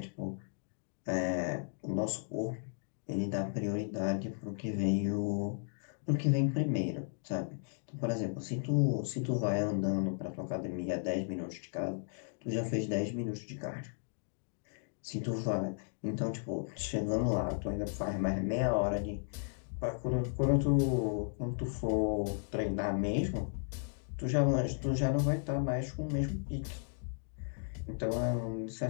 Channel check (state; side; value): silent; right; digital silence